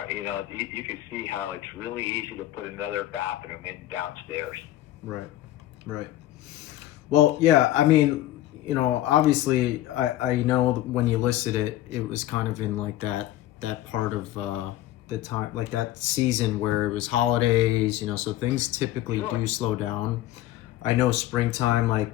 you can see how it's really easy to put another bathroom in downstairs. Right. Right. Well, yeah, I mean, obviously, I know that when you listed it, it was kind of in like that part of the time, like that season where it was holidays, so things typically Sure. do slow down. I know springtime,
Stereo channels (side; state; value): right; quieter; 14.4 dB